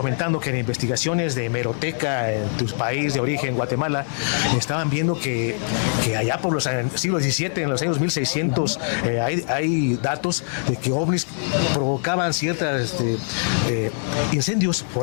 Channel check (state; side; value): silent; right; 55 dB below the other